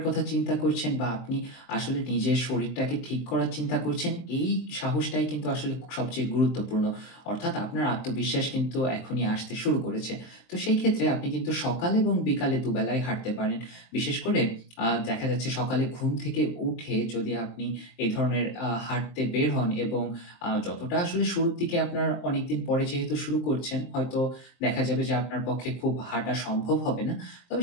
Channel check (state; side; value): late; right; 23 ms